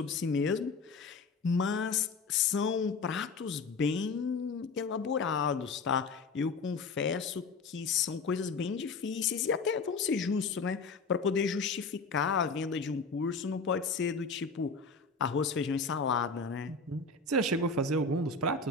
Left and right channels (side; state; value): right; quieter; 4.2 dB